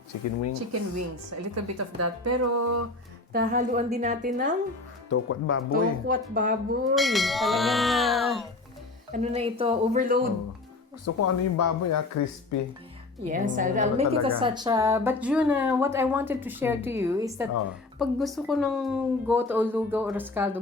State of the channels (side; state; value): right; quieter; 3.3 dB